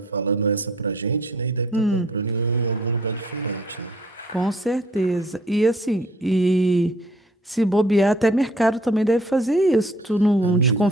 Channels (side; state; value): both; normal; correlation 0.57